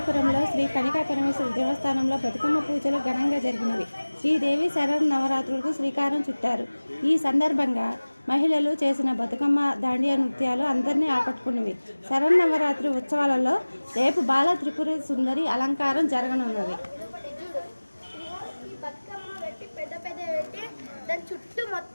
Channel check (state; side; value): inverted; both; correlation -1.00